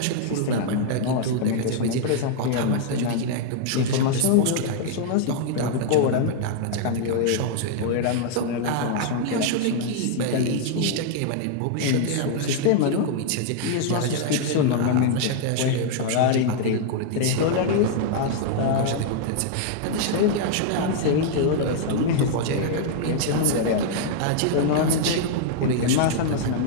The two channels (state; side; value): different; both; correlation -0.01